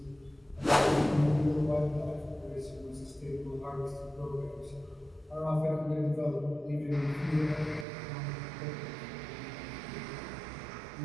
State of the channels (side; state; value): left; drops out; at 7.9 s